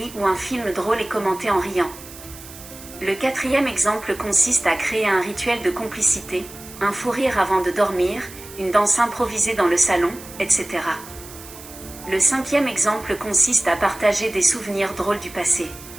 ou un film drôle et commenter en riant. Le quatrième exemple consiste à créer un rituel de complicité, un fou rire avant de dormir, une danse improvisée dans le salon, etc. Le cinquième exemple consiste à partager des souvenirs drôles du passé.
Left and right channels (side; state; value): right; noise; hiss, 17 dB below the sound